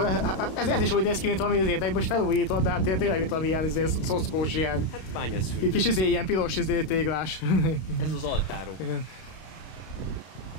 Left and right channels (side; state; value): right; late; 32 ms